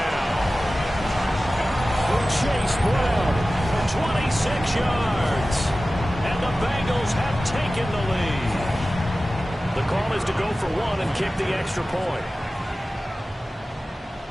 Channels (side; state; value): both; normal; correlation 0.96